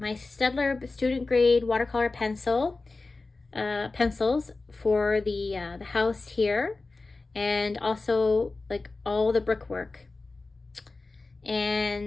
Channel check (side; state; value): right; quieter; 3.6 dB